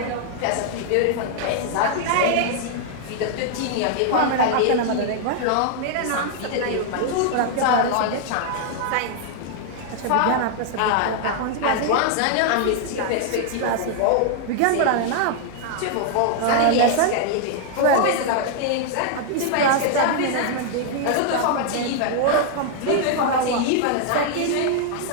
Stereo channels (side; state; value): both; different; correlation 0.00